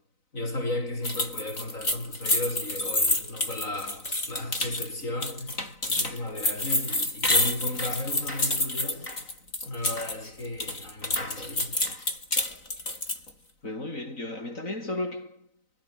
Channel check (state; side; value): late; right; 3.9 ms